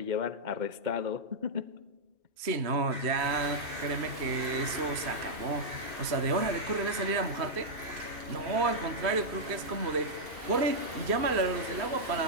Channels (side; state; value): left; late; 3.0 ms